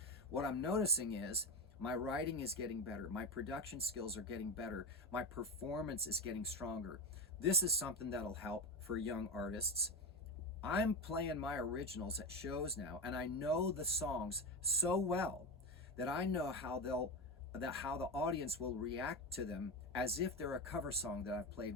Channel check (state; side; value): normal; both; correlation 0.18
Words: What I'm noticing is my writing is getting better. My production skills are getting better. My performance is getting stronger. This is something that'll help for young artists. I'm playing my originals at shows now, and I know the songs so well that I know how the audience will react to them as if they're a cover song that I've played